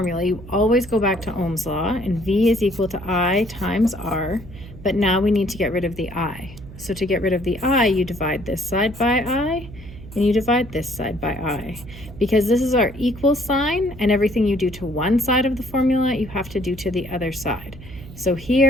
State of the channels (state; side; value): noise; right; hum, 16 dB below the sound